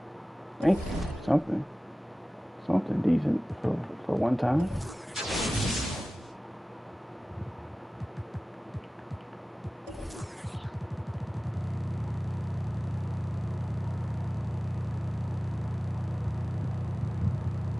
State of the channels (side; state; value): both; normal; correlation 0.97